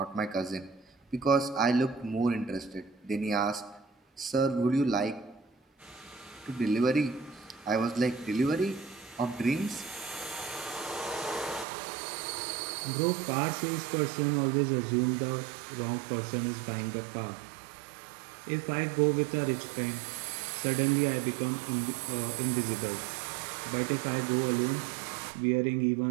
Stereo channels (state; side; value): drops out; left; at 11.7 s